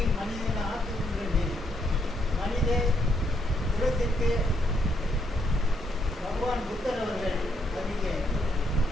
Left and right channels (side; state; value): both; normal; correlation 0.74